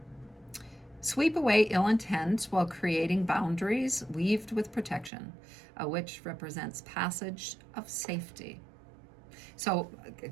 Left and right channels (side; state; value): left; drops out; at 5.1 s